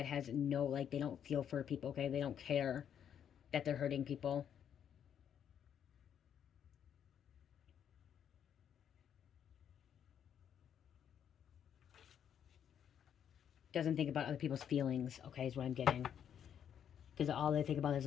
has no, like, they don't feel for people, okay? They don't care that they're hurting people. Doesn't think about other people's feelings, okay, is what I'm getting. Because all they think about is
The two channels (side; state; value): right; quieter; 8.9 dB